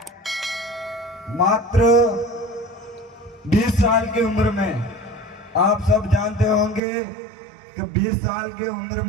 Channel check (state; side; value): drops out; left; at 6.8 s